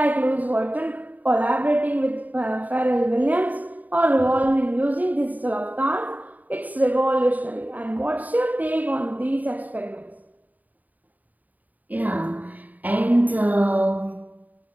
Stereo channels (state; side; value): late; left; 0.079 ms